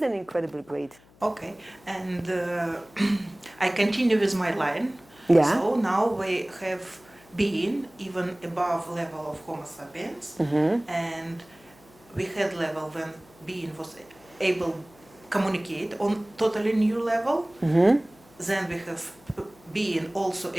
an incredible grade. Okay. And I continue with my line. Yeah. So now we have being even above level of Homo sapiens, and we had level when being was able communicate on totally new level. Then we have being also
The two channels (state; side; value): noise; left; hum, 27 dB below the sound